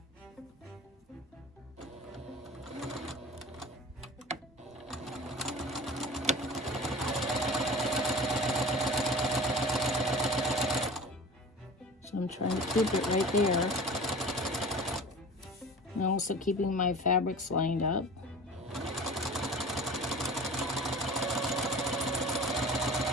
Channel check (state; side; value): normal; both; correlation 0.38